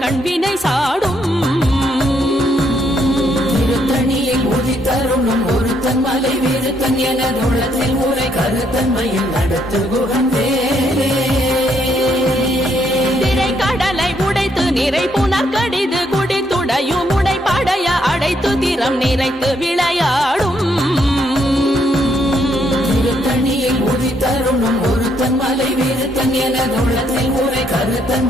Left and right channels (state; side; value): normal; both; correlation 0.73